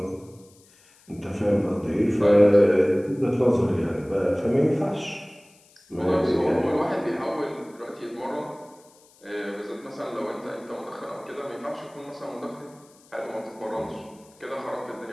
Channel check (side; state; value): left; noise; hiss, 28 dB below the sound